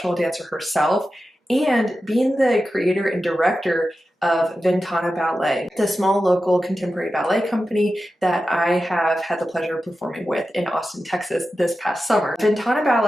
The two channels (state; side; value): normal; both; correlation 0.92